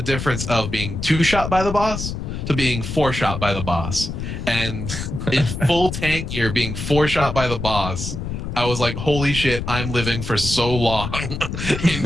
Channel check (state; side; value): noise; left; rumble, 5 dB below the sound